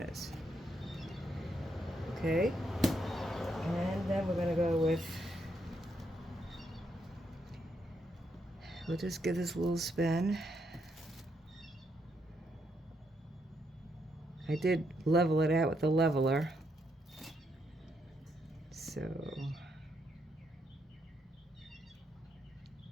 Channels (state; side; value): normal; both; correlation 0.77